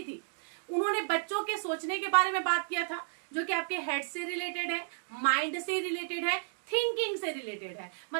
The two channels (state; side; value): silent; left; digital silence